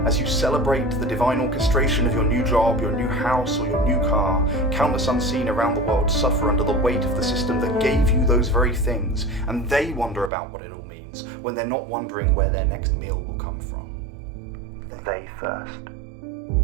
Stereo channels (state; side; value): drops out; left; at 10.3 s